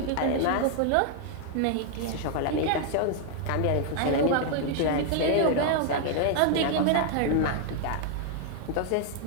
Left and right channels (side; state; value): both; different; correlation 0.00